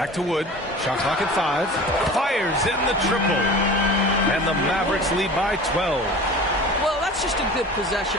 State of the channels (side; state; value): both; normal; correlation 0.38